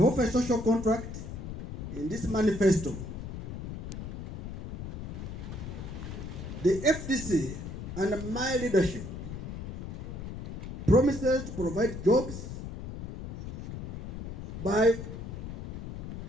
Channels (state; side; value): noise; left; rumble, 8 dB below the sound